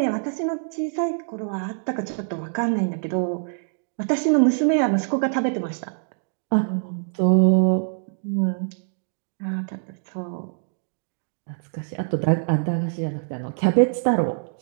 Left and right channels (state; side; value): silent; left; digital silence